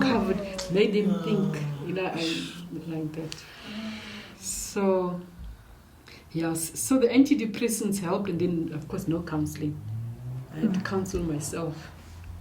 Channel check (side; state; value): both; identical; correlation 1.00